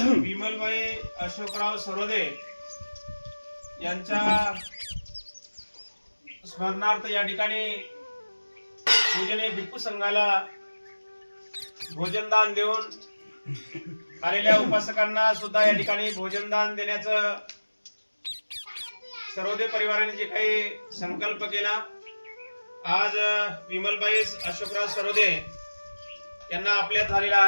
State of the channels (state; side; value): inverted; both; correlation -1.00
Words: अशोकराव सरोदे यांच्या स्मरणार्थ या ठिकाणी पूजनीय भिक्खू संघाला भोजनदान देऊन आलेल्या उपासकांना सुद्धा या ठिकाणी भोजनदान देण्याचं सरोदे परिवाराने जे काही संकल्प केला, आज विमलबाई अशोकराव सरोदे यांना आपल्यात झालेला